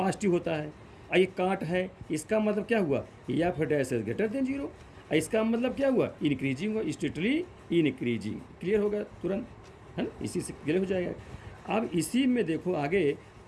होता है, और ये काट है, इसका मतलब क्या हुआ, या फिर डैश एस ग्रेटर देन 0, इसका मतलब क्या हुआ, इंक्रीजिंग हुआ, स्ट्रिक्टली इंक्रीजिंग, क्लियर होगा तुरंत, है ना, इसी से क्लियर हो जाएगा। अब इसी में देखो आगे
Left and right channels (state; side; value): identical; both; correlation 1.00